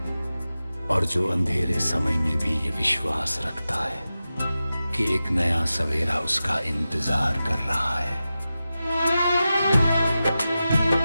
और जो अंधेरे समय में भी ये विश्वास रखता है कि एक नया सवेरा उसका इंतजार कर रहा है।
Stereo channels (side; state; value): both; inverted; correlation -0.93